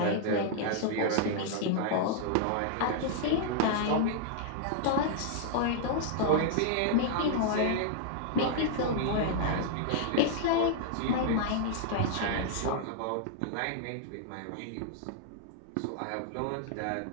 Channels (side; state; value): both; different; correlation -0.01